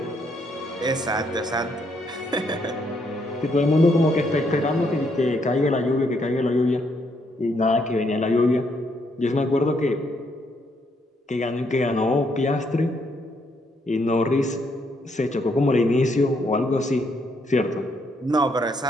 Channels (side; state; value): both; normal; correlation 0.73